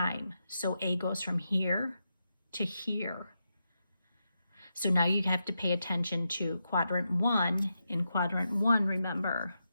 So A goes from here to here. So now you have to pay attention to quadrant 1. In quadrant 1, remember,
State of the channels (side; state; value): both; inverted; correlation -0.86